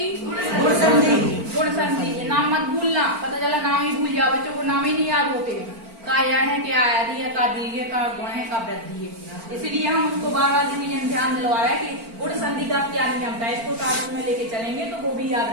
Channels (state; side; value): late; left; 4.4 ms